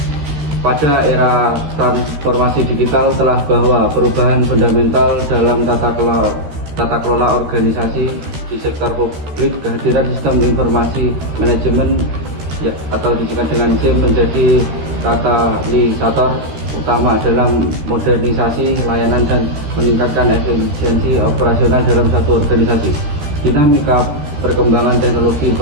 Pada era transformasi digital telah bahwa perubahan fundamental dalam tata kelola organisasi di sektor publik, kehadiran sistem informasi manajemen atau disingkat dengan SIM menjadi katalisator utama dalam modernisasi layanan dan meningkatkan efisiensi operasional dalam satu organisasi. Dinamika perkembangan teknologi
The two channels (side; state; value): left; late; 14 ms